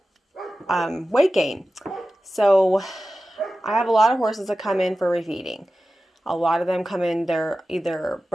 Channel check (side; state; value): both; normal; correlation 0.95